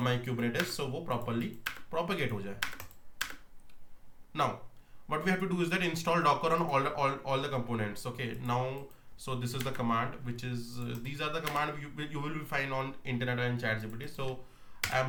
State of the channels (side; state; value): both; identical; correlation 1.00